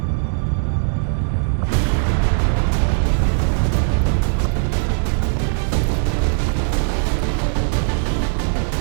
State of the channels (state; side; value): silent; left; 60 dB below the other